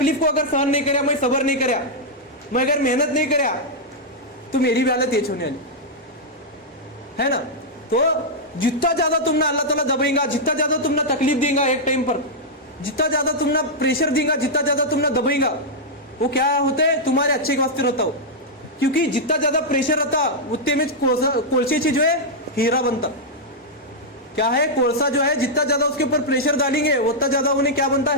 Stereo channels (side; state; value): both; normal; correlation -0.05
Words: को अगर सहन नहीं कराया, मैं सबर नहीं कराया, मैं अगर मेहनत नहीं कराया तो मेरी भी हालत ये होने वाली है ना। तो जितना ज्यादा तुम ना अल्लाह ताला दबेगा, जितना ज्यादा तुम ना तकलीफ देगा एक टाइम पर, जितना ज्यादा तुम ना प्रेशर देगा, जितना ज्यादा तुम ना दबेगा, वो क्या होता है तुम्हारे अच्छे के वास्ते रहता हो, क्योंकि जितना ज्यादा प्रेशर रहता उतने में कोलसे से जो है हीरा बनता। क्या है, कोळसा जो है जितना ज्यादा उसके ऊपर प्रेशर डालेंगे उतना ज्यादा उन्हें क्या बनता